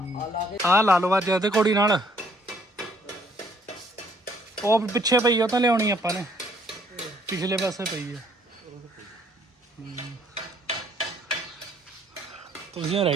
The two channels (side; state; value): both; normal; correlation 0.64